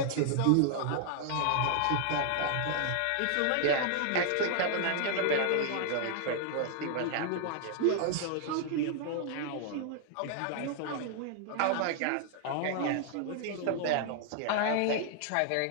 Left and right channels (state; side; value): different; both; correlation 0.00